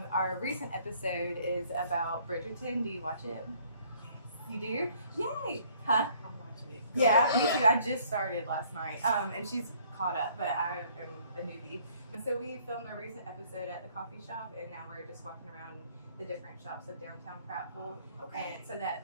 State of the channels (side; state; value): both; inverted; correlation -0.60